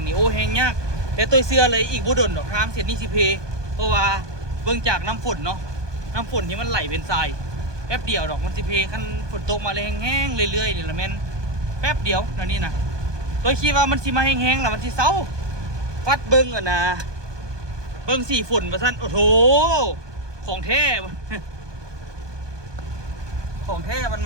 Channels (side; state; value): left; late; 1.2 ms